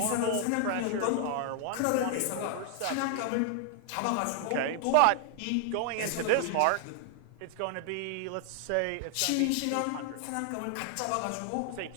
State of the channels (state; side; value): different; both; correlation 0.00